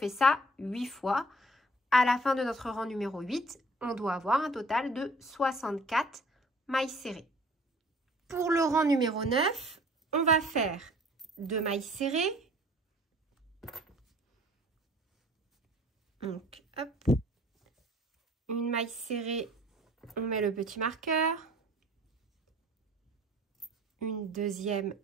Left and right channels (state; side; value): normal; both; correlation 0.52